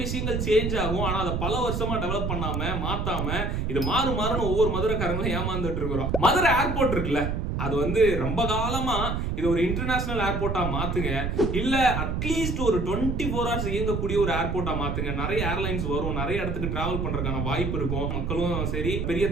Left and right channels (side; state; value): right; noise; rumble, 1 dB below the sound